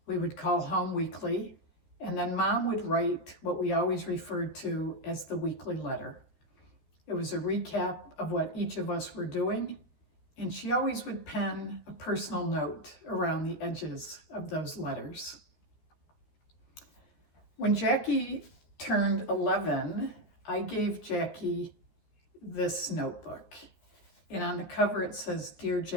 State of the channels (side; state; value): right; late; 13 ms